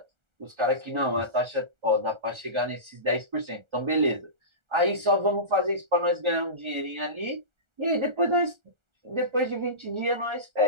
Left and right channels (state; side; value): late; left; 1.4 ms